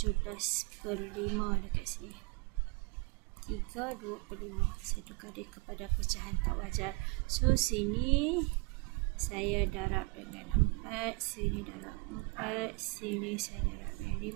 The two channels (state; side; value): quieter; left; 27.8 dB